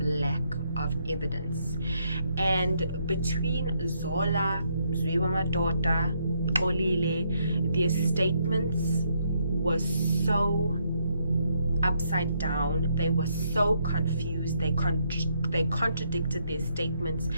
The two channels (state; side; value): inverted; both; correlation -0.74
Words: of evidence. And between Zola, Mzwiwa-Madota, Olile, their statements were so upside down. They were so confused. They contradicted their statements.